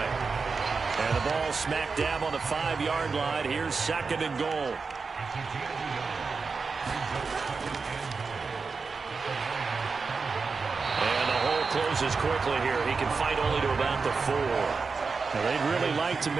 And the ball smack dab on the 5-yard line. Here's 2nd and goal. And the hole closes quickly here. He can fight only to about the 4. Now, they'd really like to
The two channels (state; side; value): quieter; left; 4.7 dB